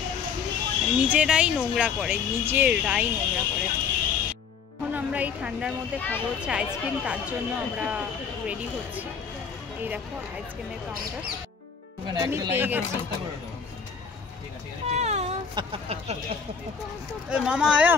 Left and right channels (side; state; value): right; quieter; 6.2 dB